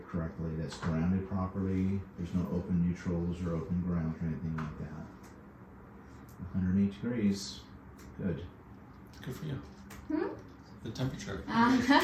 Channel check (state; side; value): identical; both; correlation 1.00